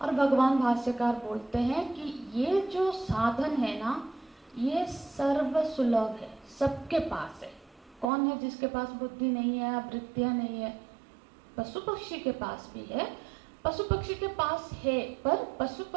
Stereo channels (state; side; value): drops out; left; at 8.1 s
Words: और भगवान भाष्यकार बोलते हैं कि ये जो साधन है ना, ये सर्व सुलभ है, सबके पास है। कौन है जिसके पास बुद्धि नहीं है, वृत्तियां नहीं है? पशु पक्षी के पास भी है, पशु पक्षी के पास है, पर पशु